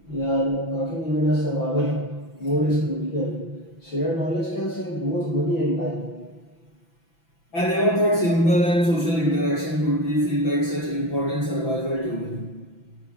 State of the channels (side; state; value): right; late; 6.0 ms